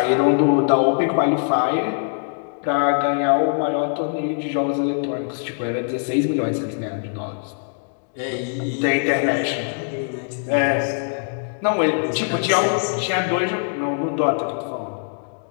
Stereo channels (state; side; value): silent; right; digital silence